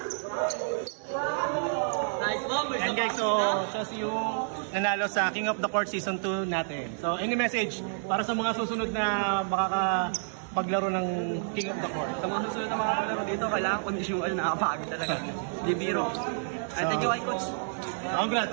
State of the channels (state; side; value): silent; left; digital silence